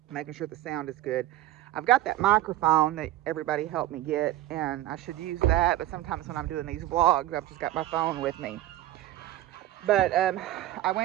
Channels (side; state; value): left; quieter; 14.7 dB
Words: making sure the sound is good. I've got that microphone that everybody helped me get, and I should use that, but sometimes when I'm doing these vlogs, I've just got my phone with me. But I